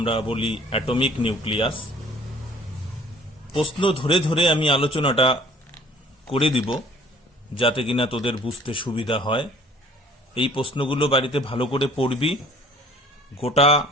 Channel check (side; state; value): both; normal; correlation 0.53